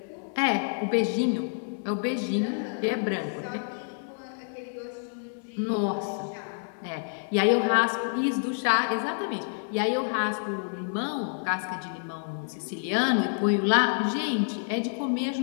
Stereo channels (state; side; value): silent; right; digital silence